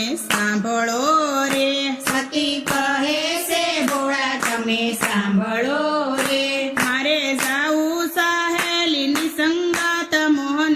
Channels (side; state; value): both; identical; correlation 1.00